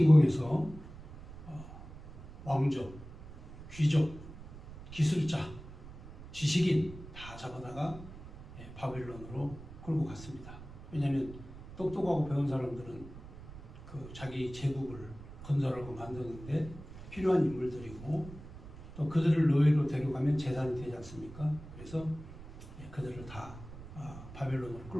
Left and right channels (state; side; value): noise; right; rumble, 15 dB below the sound